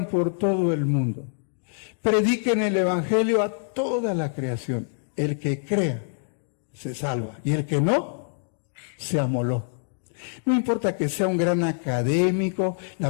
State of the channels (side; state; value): right; silent; digital silence